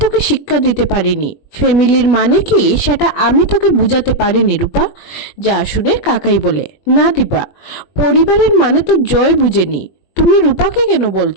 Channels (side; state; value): right; late; 21 ms